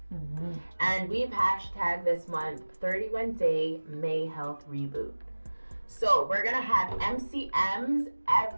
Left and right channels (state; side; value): inverted; both; correlation -1.00